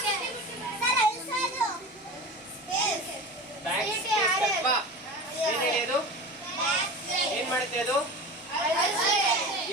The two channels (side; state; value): both; normal; correlation 0.31